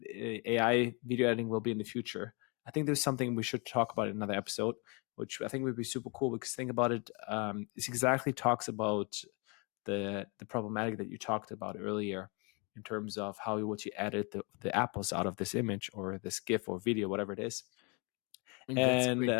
AI video editing will be in the future. I think there's something we should talk about in another episode, which I think would be super cool because think about it. It exactly talks about the problematic that you talked about earlier in terms of how would you edit the apples out of this image or this GIF or video, whatever it is. I mean, that's a And great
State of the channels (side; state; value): right; quieter; 32.3 dB